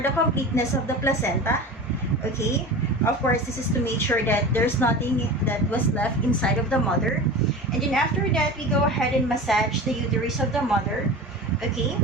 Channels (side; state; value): both; normal; correlation 0.32